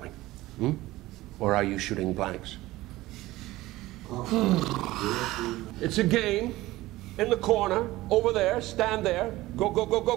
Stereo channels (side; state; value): left; quieter; 17.7 dB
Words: Hmm? Or are you shooting blanks? It's a game. In the corner, over there, stand there. Go, go, go, go,